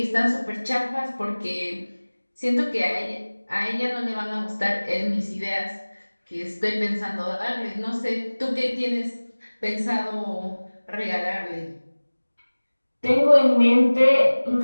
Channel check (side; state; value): both; inverted; correlation -1.00